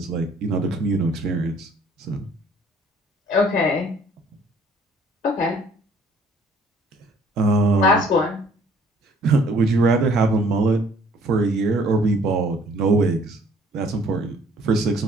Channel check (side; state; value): both; normal; correlation 0.58